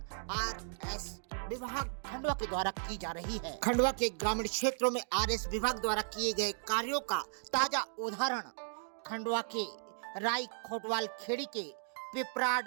आरएस विभाग खंडवा के द्वारा की जा रही है। खंडवा के ग्रामीण क्षेत्रों में आरएस विभाग द्वारा किए गए कार्यों का ताजा उदाहरण खंडवा के राई खोटवाल खेड़ी के पिपराड़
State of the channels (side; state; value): left; silent; digital silence